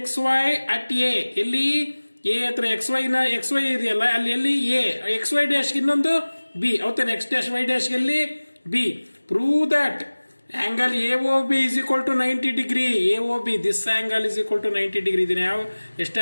XY at A. ಎಲ್ಲಿ A ಹತ್ರ XY ಇದೆಯಲ್ಲ, ಅಲ್ಲಿ ಎಲ್ಲಿ A, XY dash ಇನ್ನೊಂದು B, ಹೌದಾನೆ, X dash Y dash ಎಲ್ಲಿ B. Prove that angle AOB is equal to 90 degree. AOB, this angle is equal to 90 degree. ಇದನ್ನ ಯಾವ ಎಷ್ಟು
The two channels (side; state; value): both; inverted; correlation -1.00